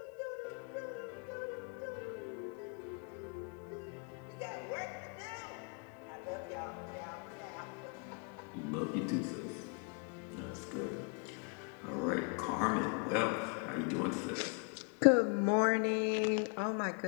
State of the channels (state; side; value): quieter; right; 38.5 dB